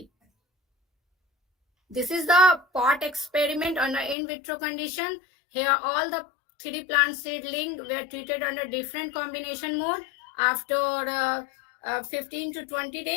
This is the pot experiment under in vitro condition. Here all the 3 plant seedling were treated under different combination mode after 15 to 20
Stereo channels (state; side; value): drops out; right; at 4.2 s